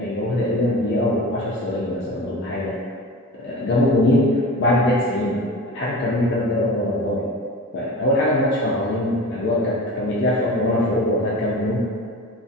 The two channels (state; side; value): normal; both; correlation 0.33